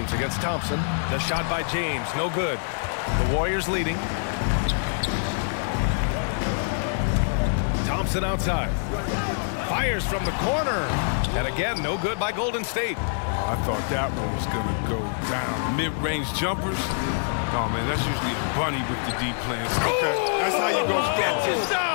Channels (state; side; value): silent; right; digital silence